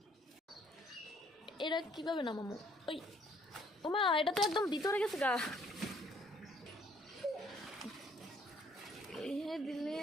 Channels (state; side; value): normal; both; correlation 0.63